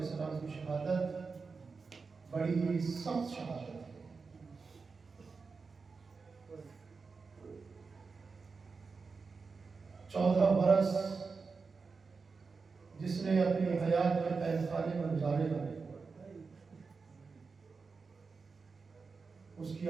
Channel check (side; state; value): left; quieter; 4.7 dB